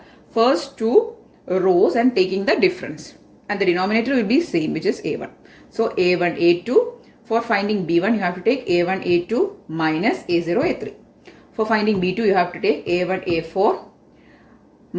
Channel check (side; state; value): both; identical; correlation 1.00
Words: first two rows and taking the difference. And the denominator will be same, which is A1. So A1, A2. For finding B1, you have to take A1, A2 minus A0, A3. For finding B2, you have to take A1, A4